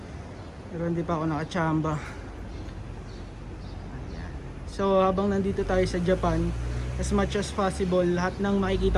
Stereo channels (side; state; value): both; identical; correlation 1.00